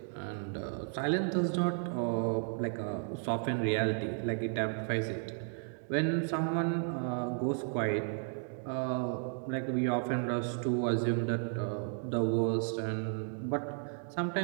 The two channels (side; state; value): left; silent; 55 dB below the other